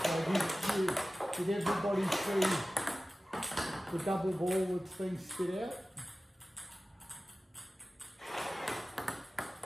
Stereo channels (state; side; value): normal; both; correlation 0.96